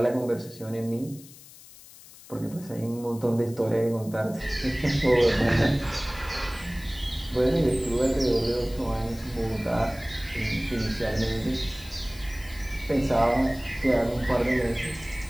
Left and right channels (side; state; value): left; noise; hiss, 20 dB below the sound